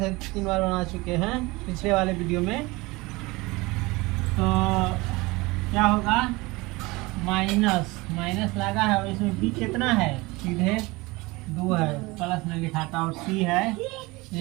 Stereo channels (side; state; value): left; quieter; 23.1 dB